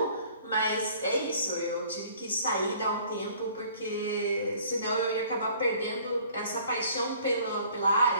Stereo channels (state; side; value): inverted; both; correlation -0.54